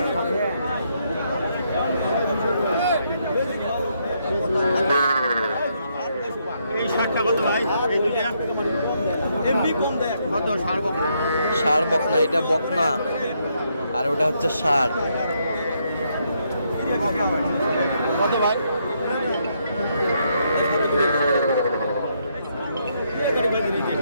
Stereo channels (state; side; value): inverted; both; correlation -0.75